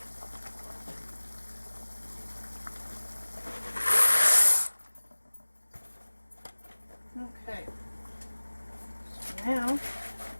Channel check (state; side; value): inverted; both; correlation -1.00